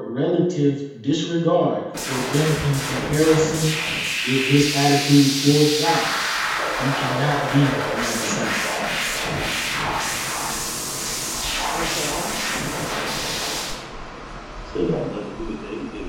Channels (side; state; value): both; identical; correlation 1.00